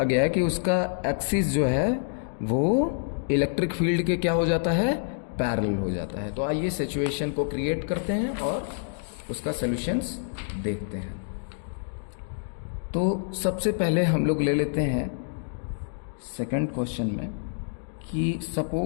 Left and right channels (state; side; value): silent; right; digital silence